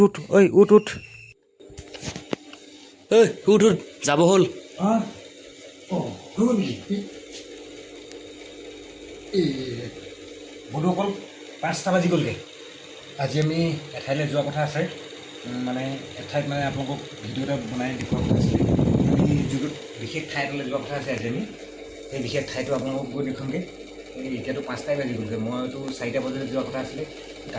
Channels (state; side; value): identical; both; correlation 1.00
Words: উঠ ঐ উঠ উঠ ঐ উঠ উঠ যাব হ'ল। বন্ধুসকল 5টা বাজি গ'লগৈ। আজি আমি এঠাইলৈ যোৱা কথা আছে, মানে এঠাইত মানে আপোনালোকক ভিডিঅ' এটা বনাই দেখুওৱা কথা আছিলে। আমি যিটো বিশেষ ঠাই এটালৈ যোৱা কথা আছে আজি আমি, সেই বিশেষ ঠাইটো আপোনালোকক গৈ দেখুৱামগৈ। এতিয়াতো 5টাই বাজি গ'লগৈ, মইতো 4টা বজাত যোৱা কথা আছিলে।